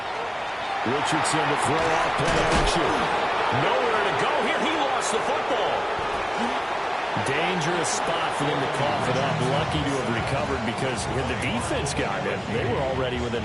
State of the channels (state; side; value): identical; both; correlation 1.00